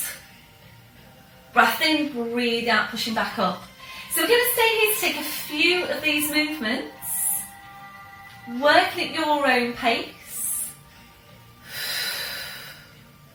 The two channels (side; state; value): both; identical; correlation 1.00